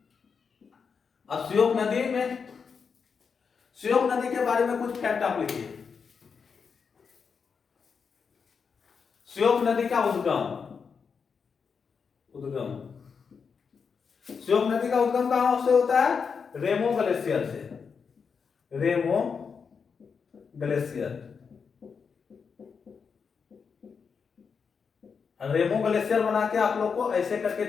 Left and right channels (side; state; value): right; quieter; 5.9 dB